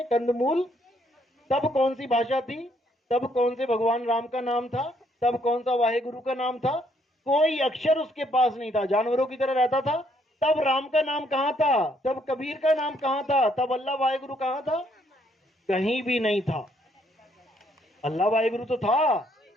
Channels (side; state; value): both; normal; correlation 0.69